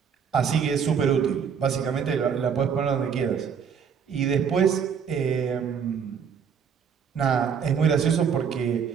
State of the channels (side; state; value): left; quieter; 7.1 dB